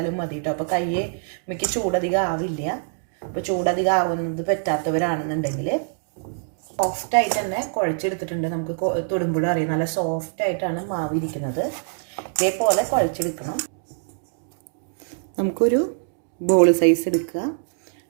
മതി കേട്ടോ. അപ്പോൾ കയ്യെ മിക്ക ചൂടധികം ആവില്ല. അപ്പോൾ ചൂടധികം ആവുന്നത് പറ്റാത്തവരാണെന്നുണ്ടെങ്കിൽ സോഫ്റ്റായിട്ട് തന്നെ കുഴച്ചെടുത്തിട്ടുണ്ട്. നമുക്ക് തൊടുമ്പോഴും അറിയാം നല്ല സോഫ്റ്റായിട്ടാണ് മാവ് ഇരിക്കുന്നത്. ഇതേപോലെ കുഴച്ചെടുക്കണം. നമുക്കൊരു ബോൾ സൈസ് എടുക്കുക.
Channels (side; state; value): left; silent; digital silence